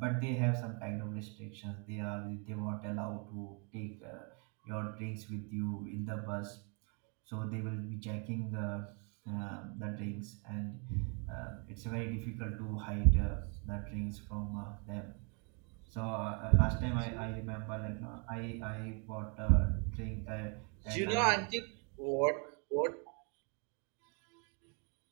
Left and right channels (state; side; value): quieter; left; 35.9 dB